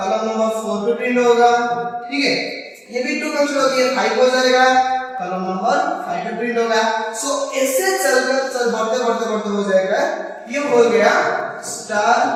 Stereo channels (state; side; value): identical; both; correlation 1.00